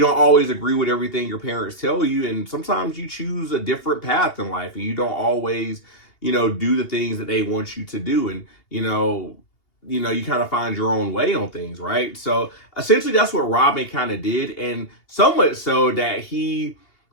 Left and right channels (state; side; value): late; right; 2.8 ms